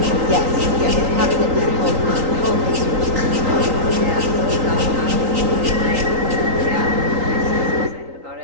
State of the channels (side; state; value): left; late; 3.8 ms